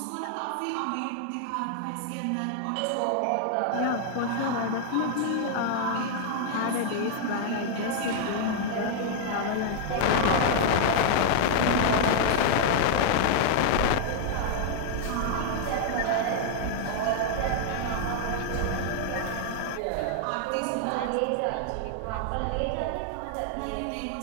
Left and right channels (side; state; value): both; different; correlation -0.01